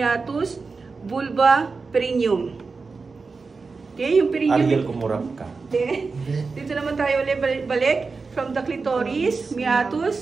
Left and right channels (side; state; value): left; quieter; 4.4 dB